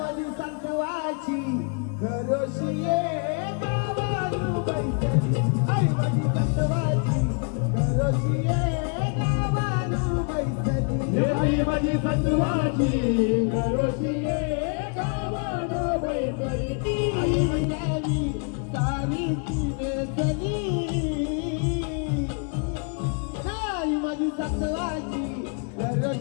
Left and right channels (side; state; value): right; quieter; 39.9 dB